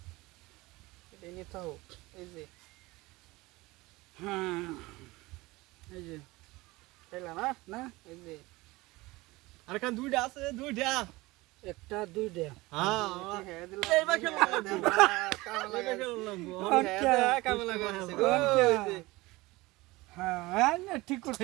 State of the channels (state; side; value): quieter; left; 21.2 dB